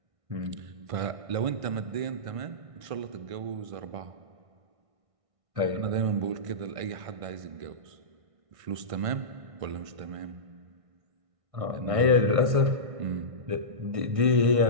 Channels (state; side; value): late; left; 1.6 ms